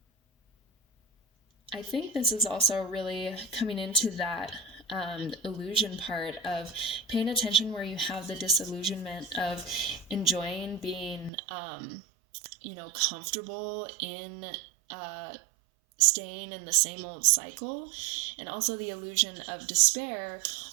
I think this is also really coming into that illusion part of paying attention, where you have the disillusionment of enjoying being comfortable in staying in the same old cycle, and also the illusion of despair,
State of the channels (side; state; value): left; drops out; at 11.3 s